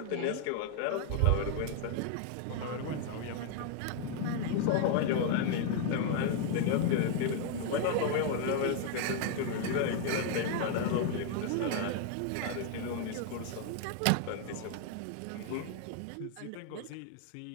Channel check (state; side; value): different; both; correlation 0.00